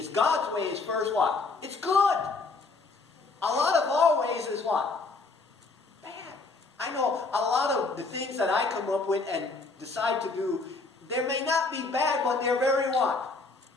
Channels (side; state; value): right; quieter; 3.8 dB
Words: God's way is first what? It's good. A lot of our ways is what? Bad. I know a lot of the things that I come up with and decide to do, they may not be bad, but they're very what?